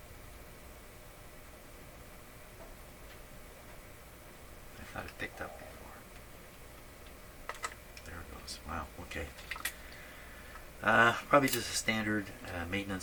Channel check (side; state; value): both; identical; correlation 1.00